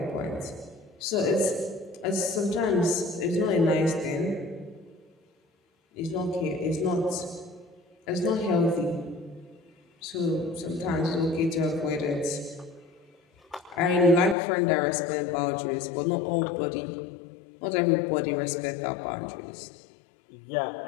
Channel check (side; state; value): right; drops out; at 14.4 s